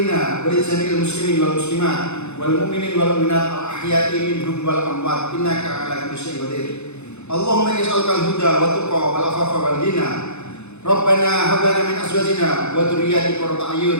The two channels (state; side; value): late; right; 0.81 ms